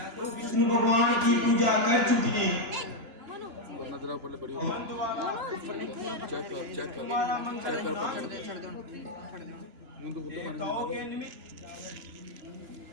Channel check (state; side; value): late; left; 2.9 ms